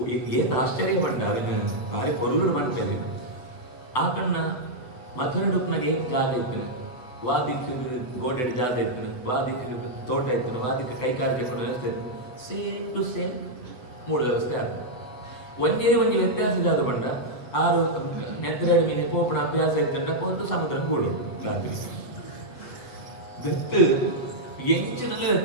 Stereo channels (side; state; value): right; late; 8.1 ms